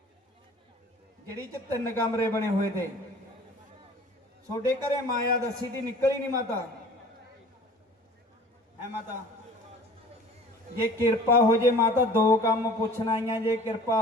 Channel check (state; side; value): normal; both; correlation 0.46